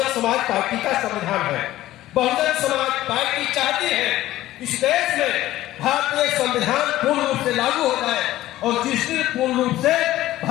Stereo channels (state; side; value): quieter; right; 15.1 dB